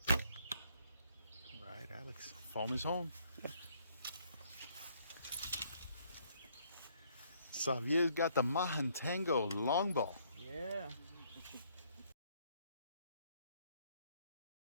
All right, Alex. Home is home. Xavier's got the Mahantango longbow. Yeah.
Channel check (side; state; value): both; inverted; correlation -0.67